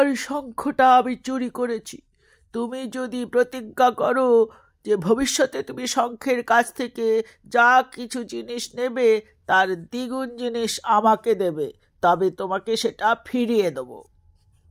শঙ্খটা আমি চুরি করেছি। তুমি যদি প্রতিজ্ঞা করো যে ভবিষ্যতে তুমি শঙ্খের কাছ থেকে যা কিছু জিনিস নেবে তার দ্বিগুণ জিনিস আমাকে দেবে, তবে তোমাকে সেটা ফিরিয়ে দেব।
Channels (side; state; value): both; identical; correlation 1.00